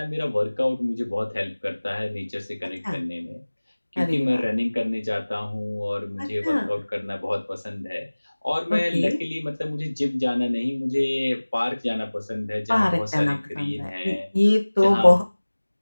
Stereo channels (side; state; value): both; inverted; correlation -1.00